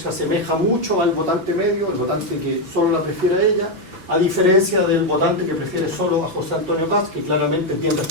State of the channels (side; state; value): left; late; 5.9 ms